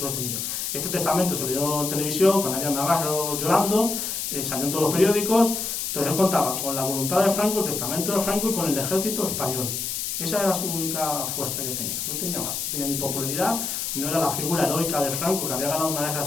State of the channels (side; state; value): left; noise; hiss, 3 dB below the sound